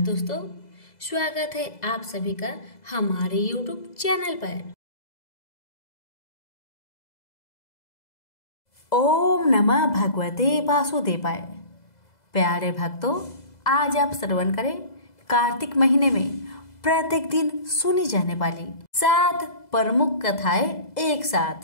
स्वागत है आप सभी का हमारे YouTube चैनल पर। ओम नमः भगवते वासुदेवाय। प्यारे भक्तों, आज आप श्रवण करें कार्तिक महीने में प्रत्येक दिन सुनी जाने वाली 7 प्रमुख कथाएं एक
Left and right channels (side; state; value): right; late; 2.0 ms